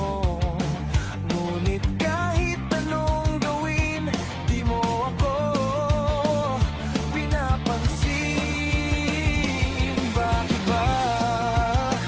Ngunit kahit anong gawin, di mo ako pinapansin. Bakit ba?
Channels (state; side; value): identical; both; correlation 1.00